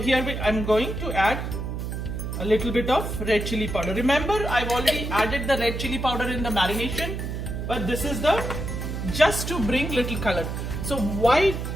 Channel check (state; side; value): noise; right; hum, 4 dB below the sound